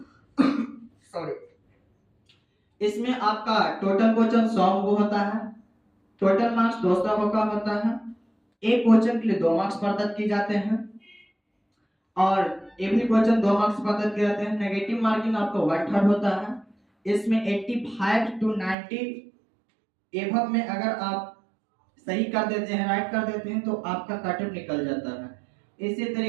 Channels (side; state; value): left; drops out; at 18.8 s